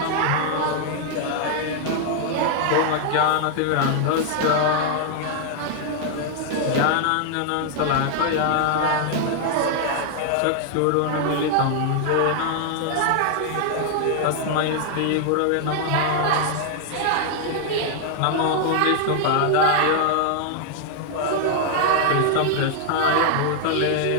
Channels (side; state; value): both; different; correlation 0.00